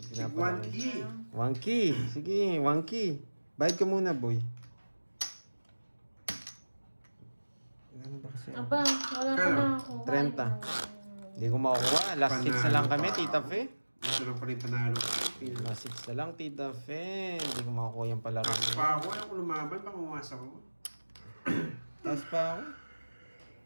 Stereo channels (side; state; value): both; inverted; correlation -1.00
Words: Pinapalaki. key. One key. Sige, one key. Bayad ka muna, boy. Ano ba kasi? Aba, wala pa na ako. 30. Hindi ko makukuha. Last hits na lang kami, Tita Fe. Ito lang pa rin panalo. Last hits na lang, Tita Fe. Hindi ko makukuha yung palaro Taas niya. pa ako. Ayaw ko lumaban. Baka umasa ko. Taas pa ako.